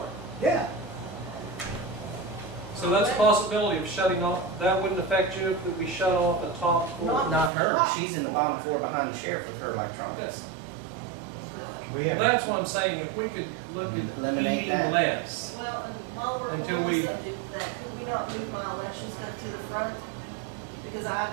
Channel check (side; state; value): left; drops out; at 7.5 s